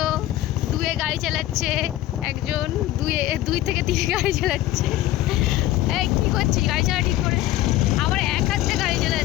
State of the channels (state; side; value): quieter; right; 14.7 dB